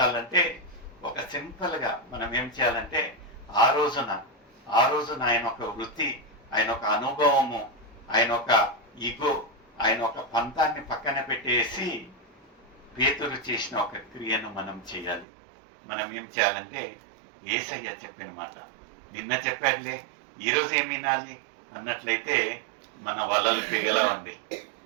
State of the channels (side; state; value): left; drops out; at 15.2 s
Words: ఒక సింపుల్ గా మనం ఏం చేయాలంటే, ఆ రోజున ఆయన ఒక వృత్తి, ఆయన ఒక అనుభవము, ఆయన ఒక ఈగో, ఆయన ఒక పంతాన్ని పక్కన పెట్టేసి పేతురు చేసిన ఒక క్రియను మనం చేయాలి. మనం ఏం చేయాలంటే, యేసయ్య చెప్పిన మాట నిన్న చెప్పాడులే, ఈరోజు ఏం వినాలి అన్నట్లయితే మన వలలు పిగలవండి.